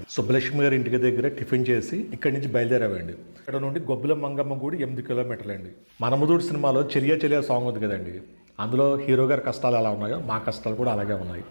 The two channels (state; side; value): inverted; both; correlation -1.00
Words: సుబ్బలక్ష్మి గారి ఇంటికి దగ్గర టిఫిన్ చేసి ఇక్కడి నుంచి బయలుదేరామండి. ఇక్కడ నుండి గొబ్బుల మంగమ్మ గుడి 8 కిలోమీటర్లండి. మనముదూడు సినిమాలో చెలియా చెలియా సాంగ్ ఉంది కదండి, అందులో హీరో గారి కష్టాలు ఎలా ఉన్నాయో మా కష్టాలు కూడా అలాగే ఉన్నాయి.